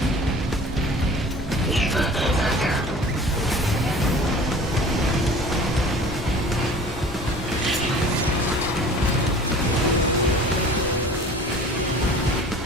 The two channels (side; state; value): both; normal; correlation 0.44